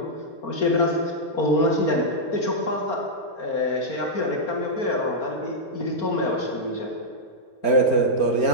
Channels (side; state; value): right; late; 4.4 ms